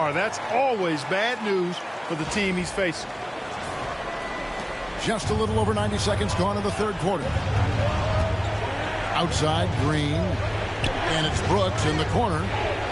That's always bad news for the team he's facing. Just a little over 90 seconds gone in the third quarter. Outside, Green. And it's Brooks in the corner.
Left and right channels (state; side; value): identical; both; correlation 1.00